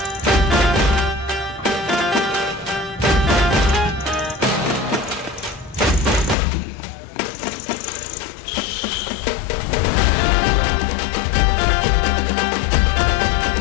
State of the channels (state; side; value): drops out; right; at 6.4 s